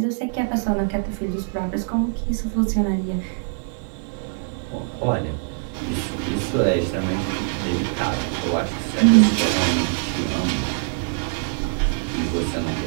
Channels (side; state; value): left; silent; 63 dB below the other